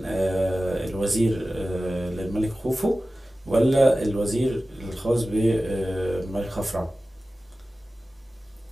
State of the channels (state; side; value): normal; both; correlation 0.95